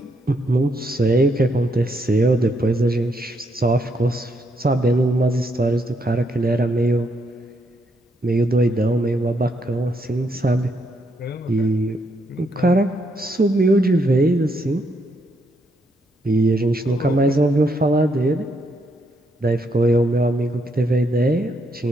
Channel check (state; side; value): normal; both; correlation 0.76